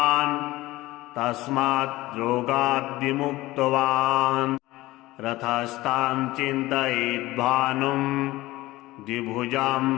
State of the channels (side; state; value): right; quieter; 18.4 dB